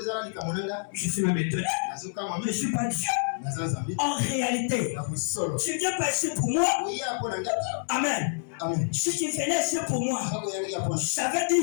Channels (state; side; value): silent; right; 60 dB below the other